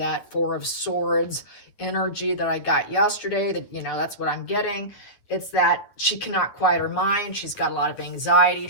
Four of Swords energy that I got yesterday. That, you know, that's what I'm getting. It's that she cannot quiet her mind. She's got a lot of anxiety.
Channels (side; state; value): right; late; 9.8 ms